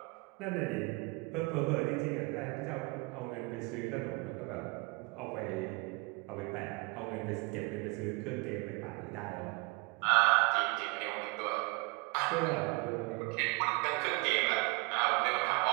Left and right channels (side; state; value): left; quieter; 27.3 dB